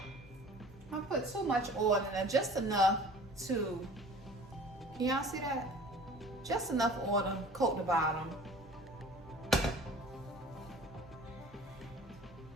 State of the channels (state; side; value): normal; both; correlation 0.45